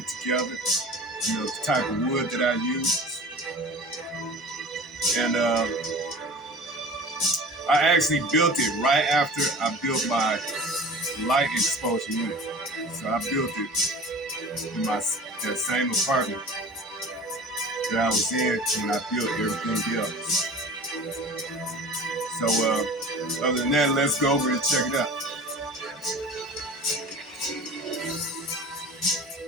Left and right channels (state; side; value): normal; both; correlation 0.39